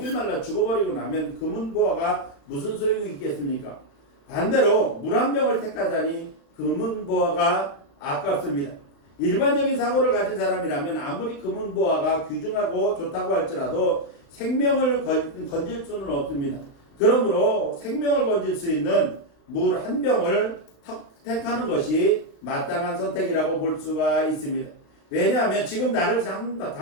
말라 죽어버리고 나면 금은보화가 무슨 소용이 있겠습니까? 반대로 물 한 병을 택하자니 금은보화가 아깝습니다. 일반적인 사고를 가진 사람이라면 아무리 금은보화가 귀중하고 좋다고 할지라도 생명을 건질 수는 없습니다. 그러므로 생명을 건질 수 있는 물 한 병을 택하는 것이 마땅한 선택이라고 볼 수가 있습니다. 왜냐하면 지금 나를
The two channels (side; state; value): right; late; 36 ms